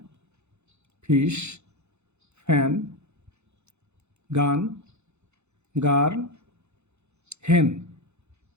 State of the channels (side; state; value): left; late; 0.81 ms